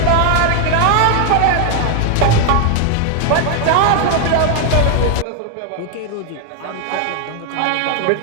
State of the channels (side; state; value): both; different; correlation 0.00